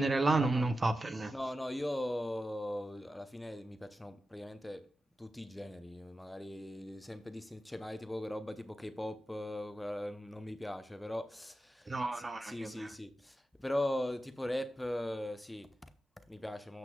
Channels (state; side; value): normal; both; correlation 0.92